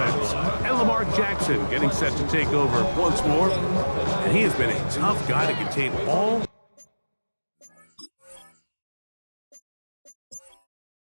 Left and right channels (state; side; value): inverted; both; correlation -1.00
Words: And Lamar Jackson getting set to take over once more. And he has been a tough guy to contain all